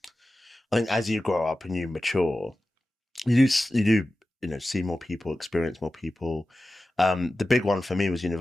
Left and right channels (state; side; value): normal; both; correlation 0.94